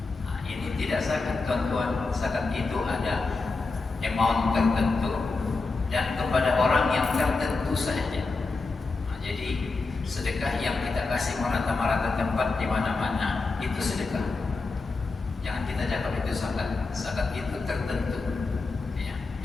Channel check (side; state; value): right; quieter; 3.9 dB